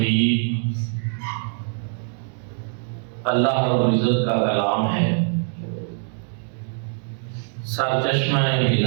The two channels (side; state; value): left; silent; 57 dB below the other